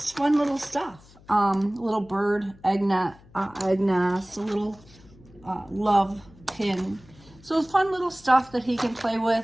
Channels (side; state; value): left; noise; hum, 25 dB below the sound